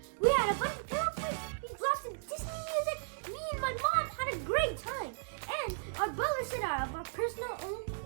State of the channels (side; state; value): left; silent; digital silence